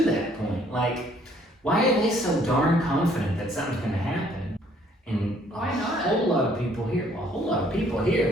that point, like, why are they so darn confident that something's going to happen? And Why not? A whole lot of people here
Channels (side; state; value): both; normal; correlation 0.63